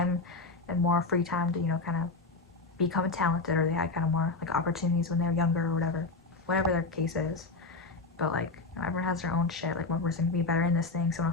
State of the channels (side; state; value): right; quieter; 3.6 dB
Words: and more free time to kind of become talented, or they had kind of more like opportunities when they were younger or whatever their case is. But like everyone has their own shit. Like one person can be better in this thing, someone